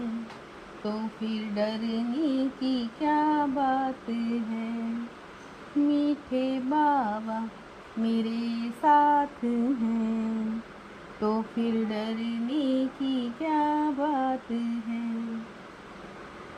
तो फिर डरने की क्या बात है। मीठे बाबा मेरे साथ हैं तो फिर डरने की क्या बात है।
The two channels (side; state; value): both; identical; correlation 1.00